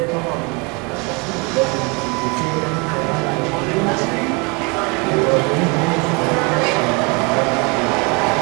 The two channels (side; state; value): left; quieter; 30.0 dB